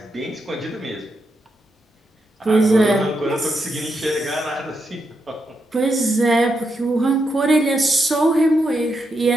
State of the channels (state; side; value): normal; both; correlation 0.83